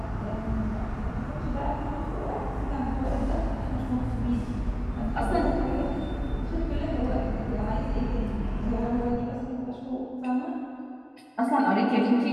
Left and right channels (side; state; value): both; identical; correlation 1.00